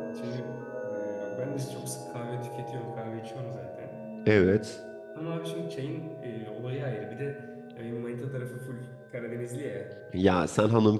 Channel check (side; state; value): both; identical; correlation 1.00